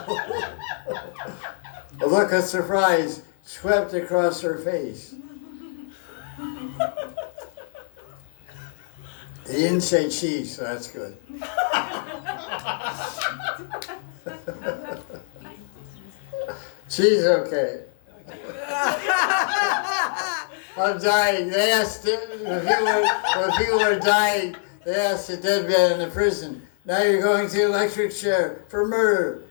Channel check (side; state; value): right; silent; 58 dB below the other